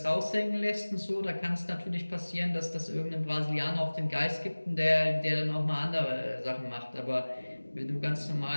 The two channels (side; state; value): both; inverted; correlation -1.00